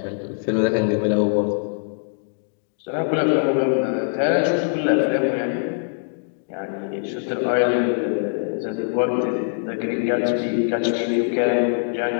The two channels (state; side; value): silent; right; digital silence